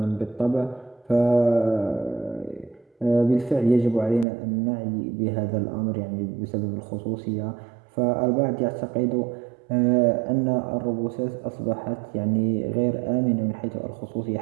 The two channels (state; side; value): drops out; left; at 4.2 s